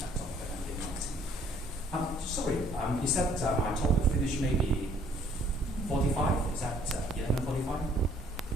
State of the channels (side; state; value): both; normal; correlation 0.61